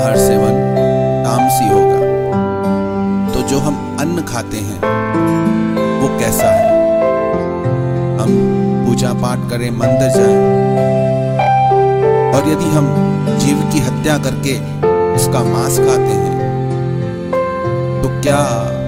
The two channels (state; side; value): identical; both; correlation 1.00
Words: से मन तामसी होगा। तो जो हम अन्न खाते हैं वो कैसा है? हम पूजा पाठ करें, मंदिर जाएं, और यदि हम जीव की हत्या करके उसका मांस खाते हैं तो क्या